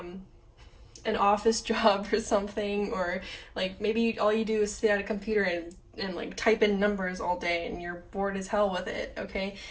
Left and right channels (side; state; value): both; identical; correlation 1.00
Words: an office job or something, or like maybe all you do is sit at a computer and like type in numbers all day and you're bored as hell with it, okay?